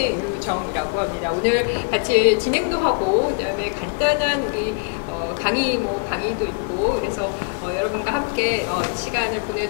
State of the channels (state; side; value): quieter; right; 38.1 dB